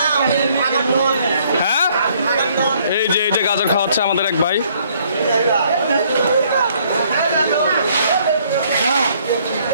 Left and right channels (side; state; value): both; inverted; correlation -0.64